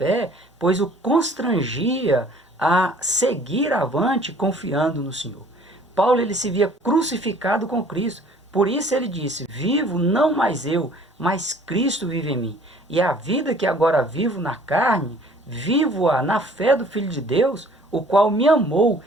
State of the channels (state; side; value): normal; both; correlation 0.54